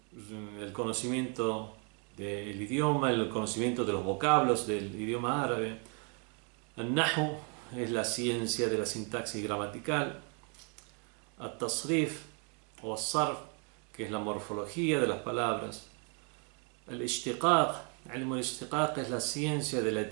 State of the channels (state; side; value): quieter; left; 37.3 dB